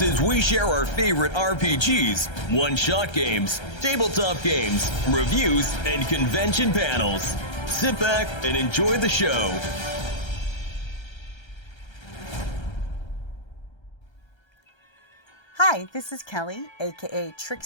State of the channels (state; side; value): late; right; 1.3 ms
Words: as we share our favorite RPGs, one-shot games, tabletop games, reviews, and convention panels. Sit back and enjoy the show. Hi, this is Kelly, aka